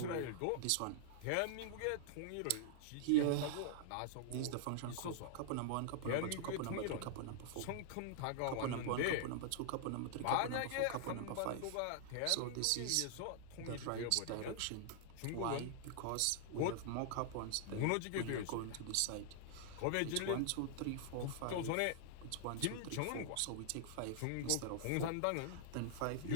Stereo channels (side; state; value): both; different; correlation -0.01